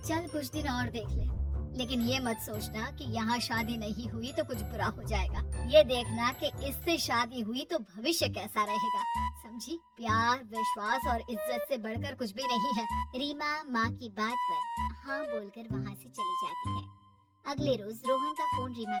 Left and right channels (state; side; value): identical; both; correlation 1.00